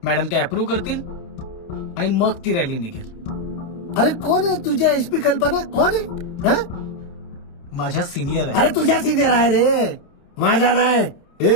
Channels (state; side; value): late; right; 28 ms